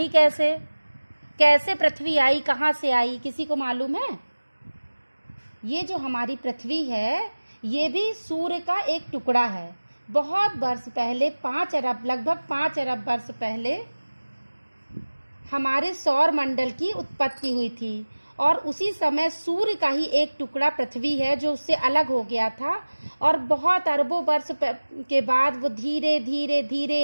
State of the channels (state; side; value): inverted; both; correlation -1.00